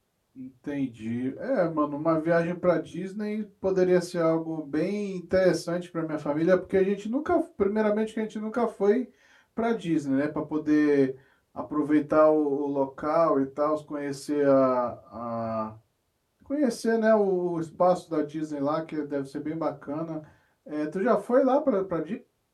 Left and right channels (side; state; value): both; identical; correlation 1.00